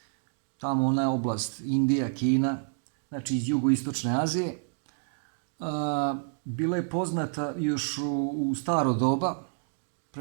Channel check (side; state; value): left; silent; digital silence